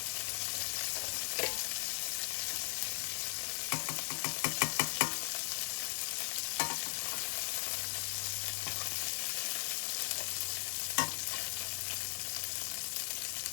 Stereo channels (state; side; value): silent; right; 52 dB below the other